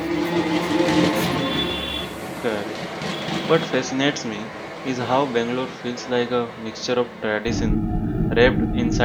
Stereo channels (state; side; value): identical; both; correlation 1.00